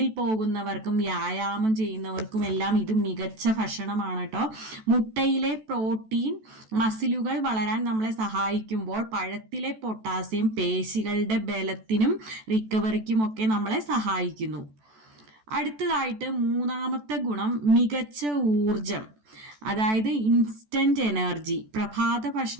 പോകുന്നവർക്കും വ്യായാമം ചെയ്യുന്നവർക്കും എല്ലാം ഇത് മികച്ച ഭക്ഷണമാണ് കേട്ടോ. മുട്ടയിലെ പ്രോട്ടീൻ മസിലുകൾ വളരാൻ നമ്മളെ സഹായിക്കുമ്പോൾ പഴത്തിലെ പൊട്ടാസ്യം പേശികളുടെ ബലത്തിനും റിക്കവറിക്കുമൊക്കെ നമ്മളെ സഹായിക്കുന്നു. അടുത്തതായിട്ട് മൂന്നാമത്തെ ഗുണം മികച്ച ഊർജം, അതായത് ഇൻസ്റ്റന്റ് എനർജി. പ്രഭാത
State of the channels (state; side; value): late; left; 14 ms